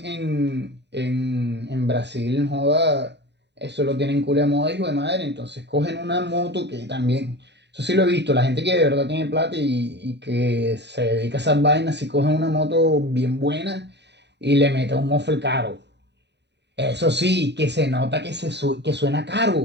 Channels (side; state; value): left; late; 0.50 ms